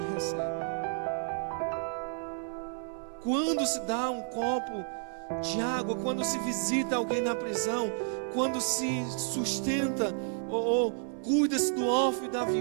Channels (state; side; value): silent; left; 57 dB below the other